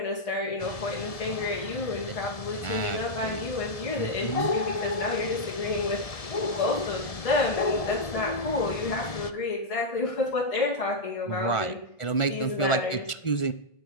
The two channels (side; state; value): right; late; 1.7 ms